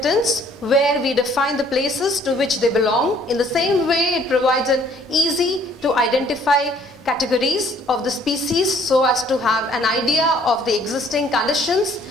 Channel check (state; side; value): normal; both; correlation 0.60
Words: where we define the places to which they belong. In the same way, it provides an easy to identify categories of the species so as to have an idea of the existing conditions